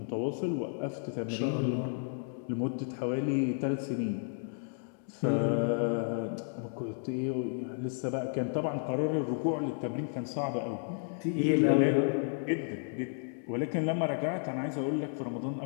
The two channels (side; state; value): right; silent; digital silence